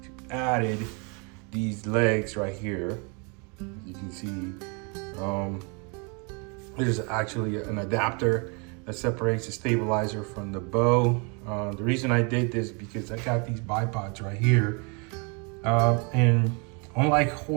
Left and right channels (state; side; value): quieter; left; 33.4 dB